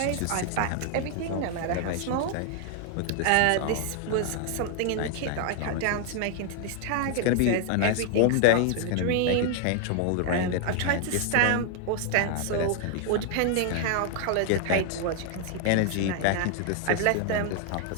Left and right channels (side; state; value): both; different; correlation 0.00